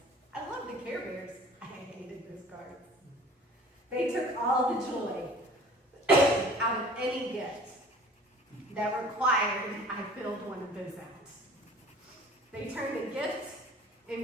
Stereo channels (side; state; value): both; normal; correlation 0.47